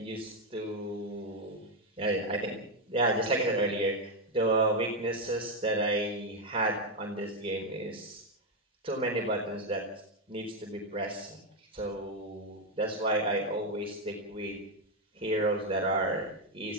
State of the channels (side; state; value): both; normal; correlation 0.05